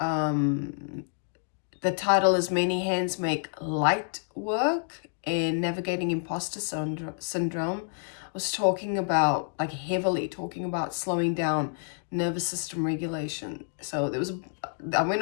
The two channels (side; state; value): right; silent; digital silence